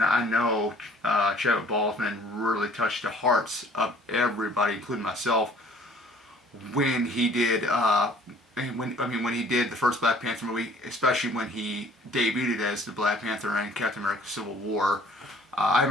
know Chadwick Boseman really touched the hearts of everybody, including myself, when he did, when he did the first Black Panther movie, especially when he debuted as the Black Panther in Captain America Civil War. I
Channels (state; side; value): normal; both; correlation 0.54